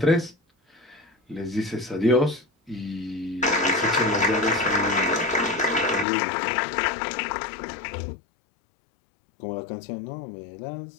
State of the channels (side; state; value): right; drops out; at 6.1 s